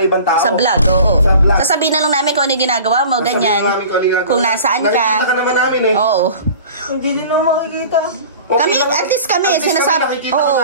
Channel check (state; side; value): inverted; both; correlation -0.42